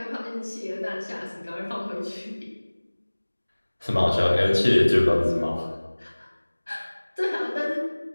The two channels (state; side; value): inverted; both; correlation -1.00